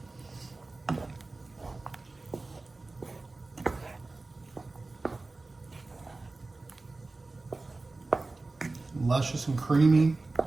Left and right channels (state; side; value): quieter; left; 3.3 dB